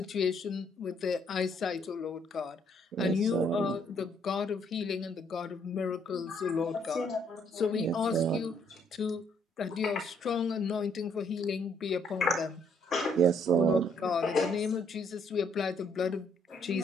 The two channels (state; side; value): normal; both; correlation 0.68